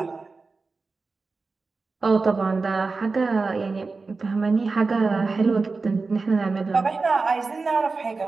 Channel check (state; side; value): quieter; left; 4.0 dB